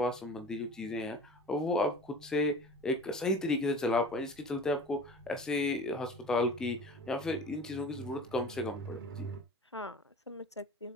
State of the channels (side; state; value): both; normal; correlation 0.39